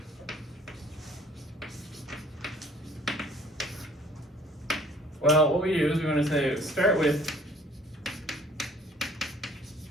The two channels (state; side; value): normal; both; correlation 0.55